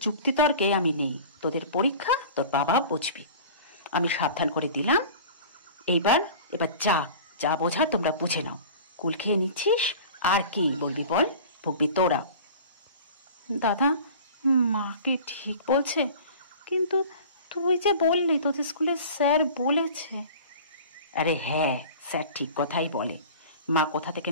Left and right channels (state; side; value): inverted; both; correlation -0.40